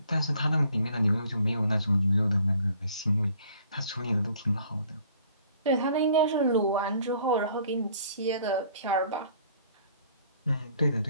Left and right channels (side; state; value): both; inverted; correlation -0.58